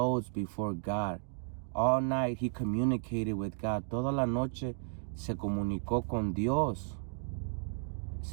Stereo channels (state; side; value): silent; left; digital silence